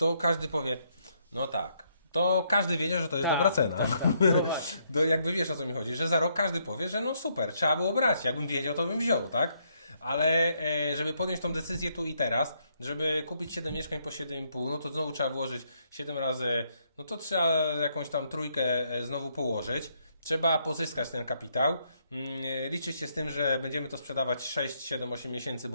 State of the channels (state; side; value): inverted; both; correlation -0.74